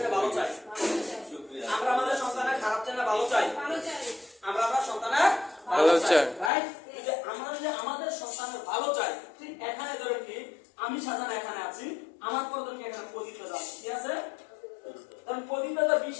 ভালো চাই, আমরা আমাদের সন্তানের খারাপ থেকে ভালো চাই, আমরা আমার সন্তানের ভালো চাই, রাইট? যে আমরা যদি আমাদের সন্তানের ভালো চাই, ঠিক এখানে ধরেন কি আমি সাজান এখানে আছি, আমার পর ধরেন কি এখানে প্রদীপ দাদা, ঠিক আছে? কারণ প্রদীপ দাদা 20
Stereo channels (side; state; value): right; drops out; at 6.5 s